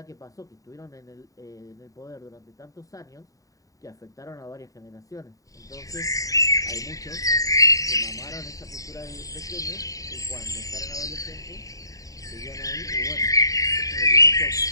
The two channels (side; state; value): right; late; 0.16 ms